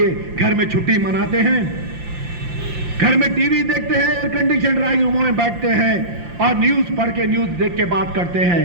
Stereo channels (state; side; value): late; left; 5.7 ms